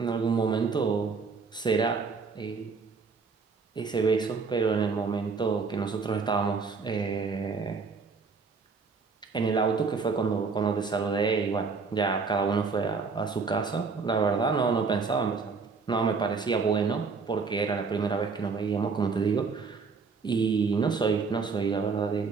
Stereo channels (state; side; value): quieter; left; 4.8 dB